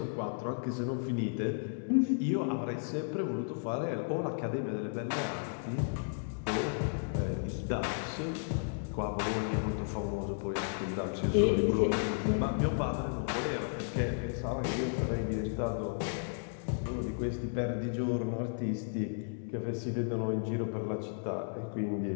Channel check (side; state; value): right; silent; digital silence